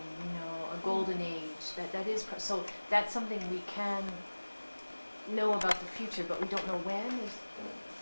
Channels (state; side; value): inverted; both; correlation -1.00